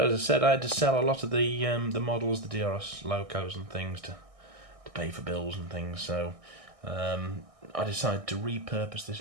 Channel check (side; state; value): left; late; 1.6 ms